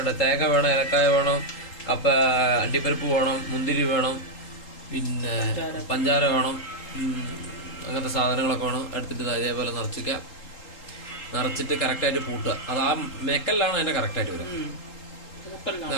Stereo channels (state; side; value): late; right; 3.8 ms